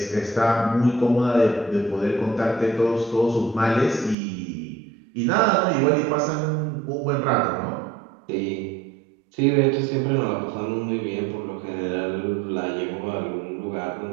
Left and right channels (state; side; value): drops out; left; at 4.2 s